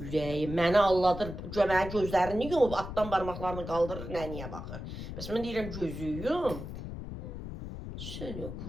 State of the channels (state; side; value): noise; left; rumble, 8 dB below the sound